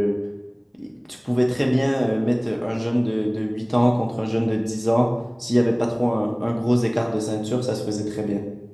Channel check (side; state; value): both; identical; correlation 1.00